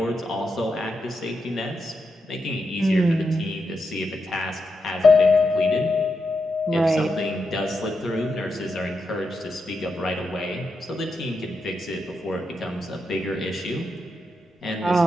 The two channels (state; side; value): normal; both; correlation 0.85